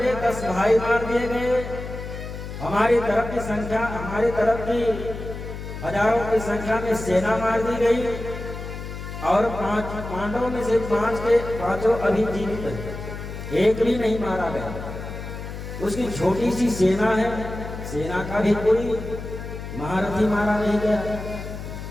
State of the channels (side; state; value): left; noise; hum, 9 dB below the sound